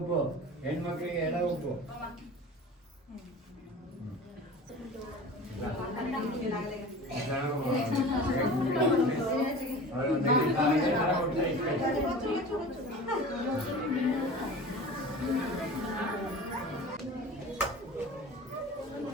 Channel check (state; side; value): normal; both; correlation 0.37